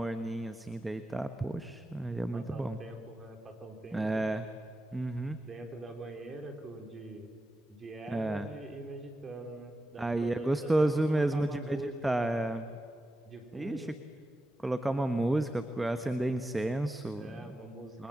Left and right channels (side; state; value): both; normal; correlation 0.90